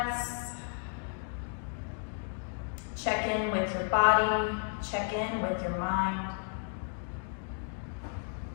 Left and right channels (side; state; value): right; silent; 56 dB below the other